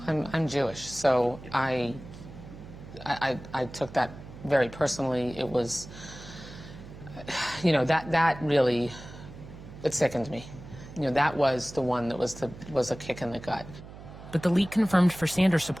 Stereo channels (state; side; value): noise; right; hum, 15 dB below the sound